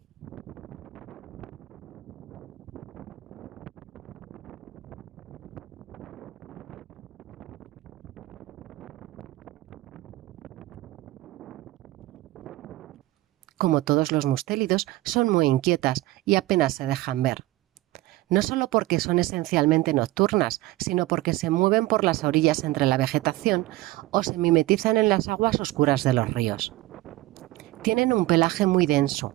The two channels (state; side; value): quieter; left; 17.8 dB